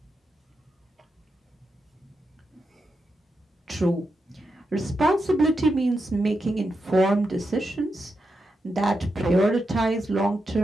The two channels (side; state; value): both; normal; correlation 0.86